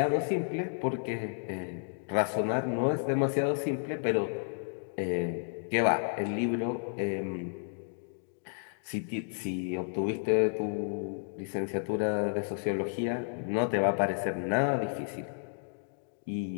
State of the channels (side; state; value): right; silent; digital silence